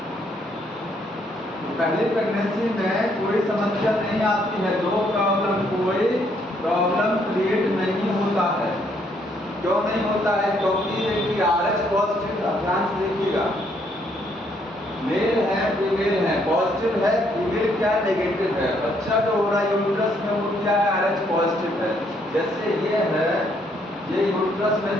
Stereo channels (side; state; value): both; normal; correlation 0.70